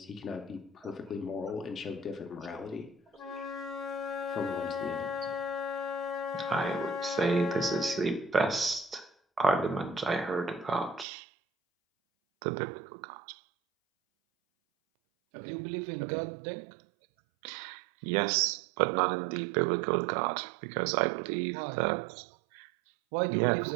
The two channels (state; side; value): drops out; left; at 11.1 s